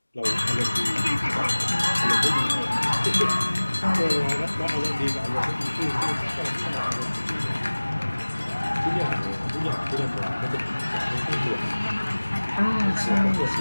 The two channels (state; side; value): inverted; both; correlation -1.00